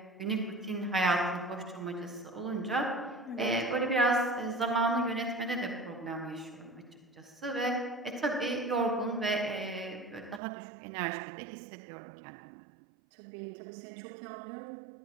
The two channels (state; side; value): drops out; left; at 10.4 s